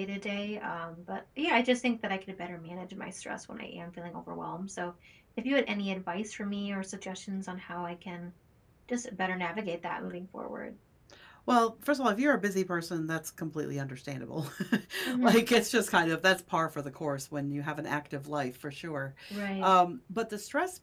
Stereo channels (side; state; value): both; identical; correlation 1.00